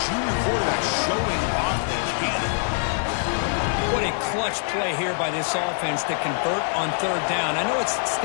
quarterback showing off the cannon. What a clutch play here by this offense to convert on third down. I know it's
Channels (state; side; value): silent; right; digital silence